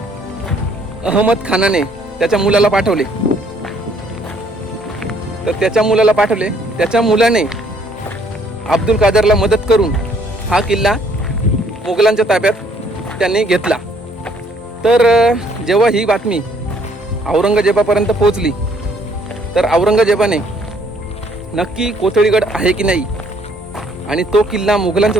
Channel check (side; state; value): both; normal; correlation 0.64